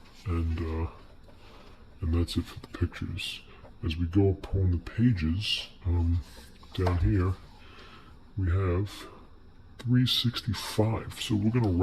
and that's it for the pictures. As we go upon the pages, down here, we have 365. So we're going to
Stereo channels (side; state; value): both; identical; correlation 1.00